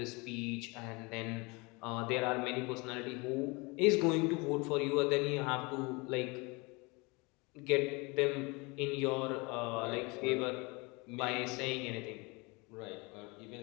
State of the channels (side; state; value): right; quieter; 26.9 dB